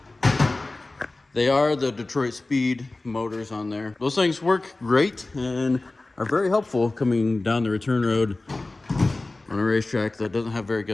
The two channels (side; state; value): right; quieter; 3.1 dB